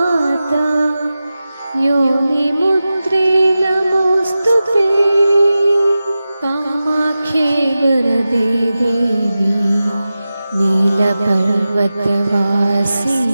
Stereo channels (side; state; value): both; inverted; correlation -0.94